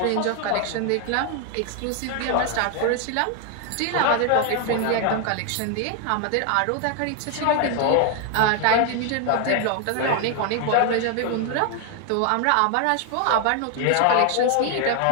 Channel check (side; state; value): both; different; correlation 0.01